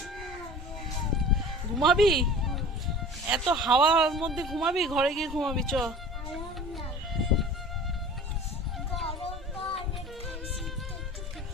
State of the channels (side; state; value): both; normal; correlation 0.40